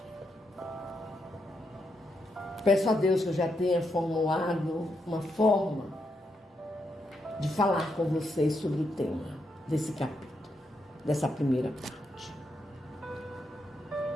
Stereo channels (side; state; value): both; normal; correlation 0.82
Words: peço a Deus que eu já tenha formulado uma forma de falar com vocês sobre o tema desse capítulo, dessa primeira parte.